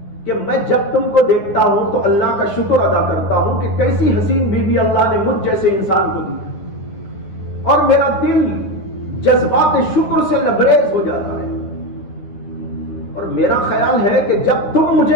کہ میں جب تم کو دیکھتا ہوں تو اللہ کا شکر ادا کرتا ہوں کہ کیسی حسین بیوی اللہ نے مجھ جیسے انسان کو دی، اور میرا دل جذبات شکر سے لبریز ہو جاتا ہے، اور میرا خیال ہے کہ جب تم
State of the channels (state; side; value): late; right; 10 ms